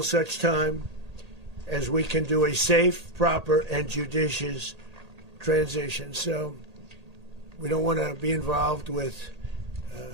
such time as we can do a safe, proper, and judicious transition. So we don't want to be involved with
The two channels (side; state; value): left; late; 1.8 ms